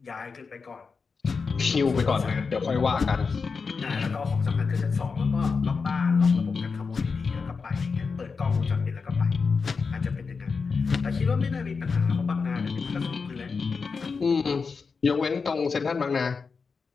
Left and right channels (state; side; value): quieter; right; 5.0 dB